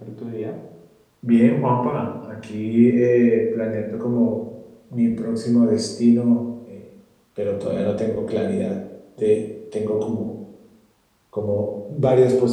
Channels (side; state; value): both; identical; correlation 1.00